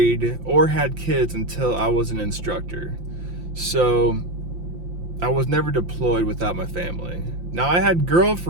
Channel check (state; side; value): late; left; 5.8 ms